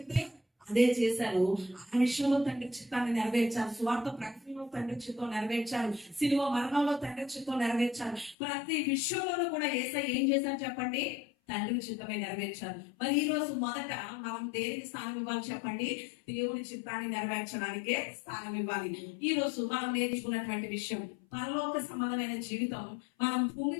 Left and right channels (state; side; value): drops out; right; at 8.3 s